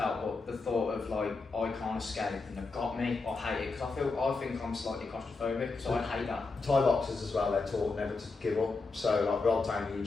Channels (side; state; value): right; quieter; 4.0 dB